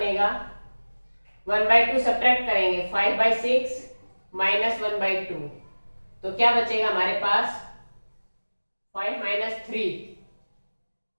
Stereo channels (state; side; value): inverted; both; correlation -1.00